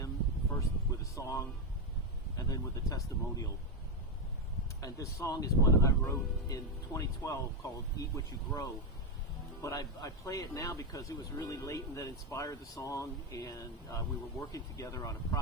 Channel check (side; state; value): both; normal; correlation 0.07